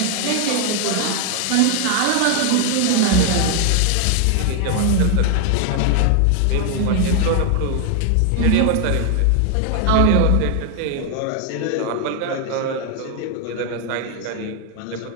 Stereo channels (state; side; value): different; both; correlation 0.00